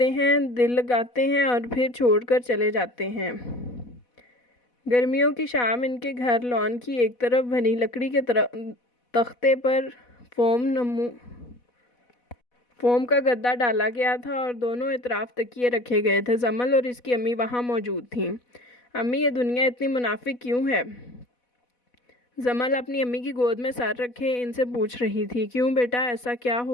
ہیں، دل لگاتے ہیں اور پھر چھوڑ کر چلے جاتے ہیں۔ گرمیوں کی شام ان کے گھر لان کی ایک طرف بنی لکڑی کے تختے پر فوم کا گدا ڈالا گیا تھا اور دونوں اطراف تکیے رکھے گئے تھے۔ جمل اور اس کی امی وہاں موجود تھیں۔ امی یہ دنیا اتنی منافق کیوں ہے؟ جمل اپنی امی کی گود میں سر رکھے ان سے پوچھ رہی تھی۔ کیوں بیٹا، ایسا کیا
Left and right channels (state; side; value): late; right; 4.1 ms